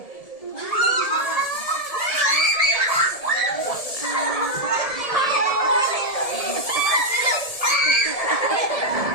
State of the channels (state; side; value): late; right; 1.7 ms